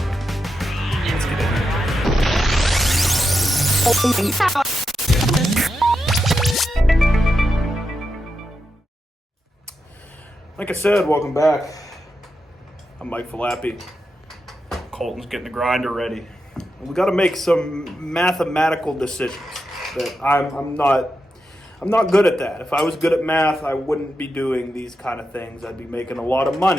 it. Let's get in here. Like I said, welcome back. I'm Mike Falappi. Colton's getting the grinder ready. We got to make some mathematical decisions that I'm not good at that. If I was good at math, I wouldn't be doing these kind of things. I'd be making a lot of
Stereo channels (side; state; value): both; normal; correlation 0.87